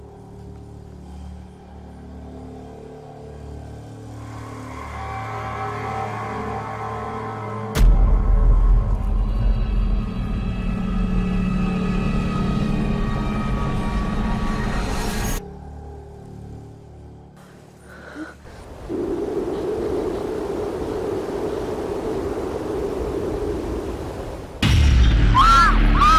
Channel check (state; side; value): identical; both; correlation 1.00